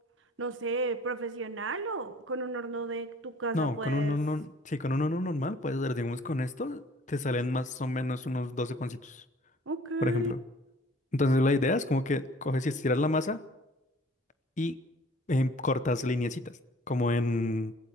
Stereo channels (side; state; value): both; normal; correlation 0.53